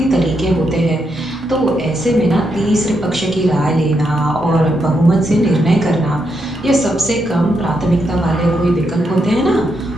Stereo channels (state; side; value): normal; both; correlation 0.81